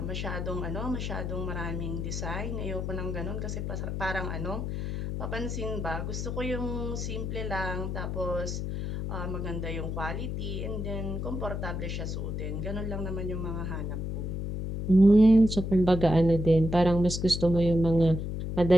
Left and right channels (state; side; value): noise; left; hum, 3 dB below the sound